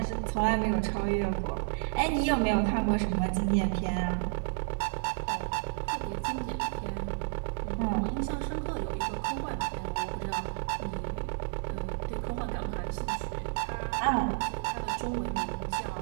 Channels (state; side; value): silent; left; digital silence